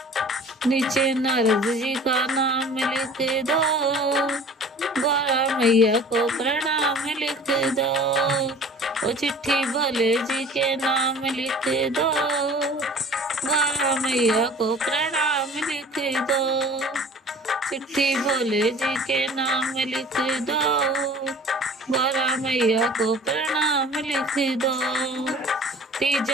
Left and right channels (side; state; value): both; normal; correlation 0.45